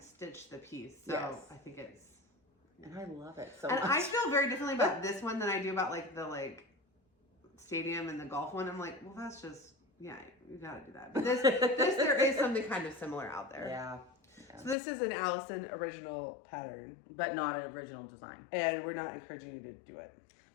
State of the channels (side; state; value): right; drops out; at 14.8 s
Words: stitched the piece. So yes. I think it's And I love it so and much. I feel very differently about this one than I do about like the like stadium and the golf one. I'm like, well, that's just, yeah, you gotta do that. But this there is something kind of similar out there. Yeah. So this is an Allison original pattern, but not an original design. And we're not encouraging you to do it.